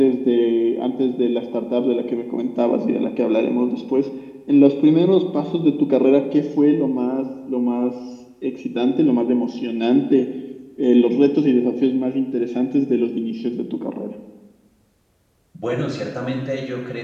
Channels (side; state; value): both; identical; correlation 1.00